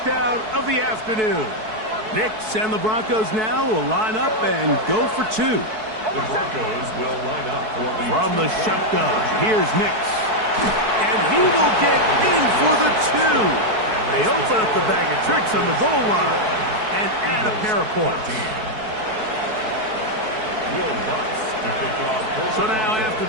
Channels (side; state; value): left; late; 4.6 ms